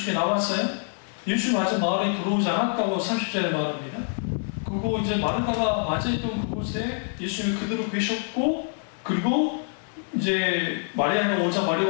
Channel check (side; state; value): right; silent; 61 dB below the other